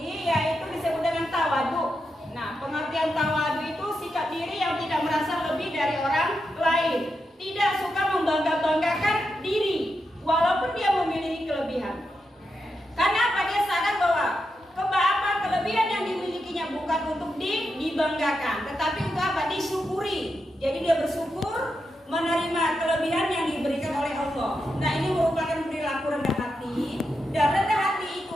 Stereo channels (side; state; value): both; normal; correlation 0.86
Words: yaitu disebut dengan tawadu. Nah, pengertian tawadu itu sikap diri yang tidak merasa lebih dari orang lain, tidak suka membangga-banggakan diri walaupun dia memiliki kelebihan. Karena apa? Dia sadar bahwa kelebihan yang dimilikinya bukan untuk dibanggakan, tetapi untuk apa? Disyukuri. Jadi dia bersyukur menerima kelebihan yang diberikan oleh Allah. Nah, ini merupakan perilaku rendah hati, dan rendah hati itu